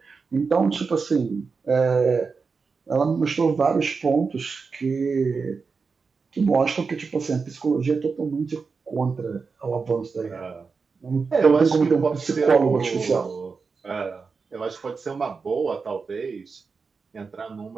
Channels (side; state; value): left; quieter; 4.9 dB